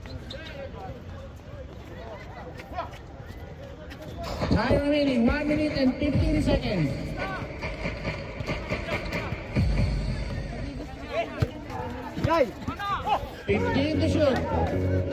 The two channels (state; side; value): identical; both; correlation 1.00